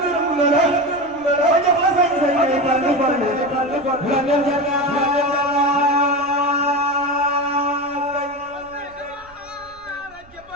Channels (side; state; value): right; noise; rumble, 27 dB below the sound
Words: gërëm la ba jox la sañ-sañ ngay fàllu la def